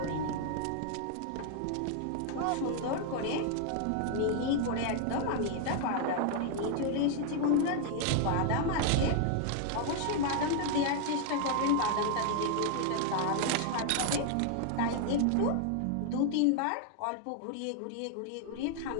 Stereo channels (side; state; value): both; different; correlation 0.00